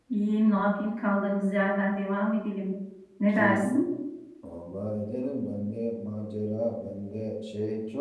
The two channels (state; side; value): identical; both; correlation 1.00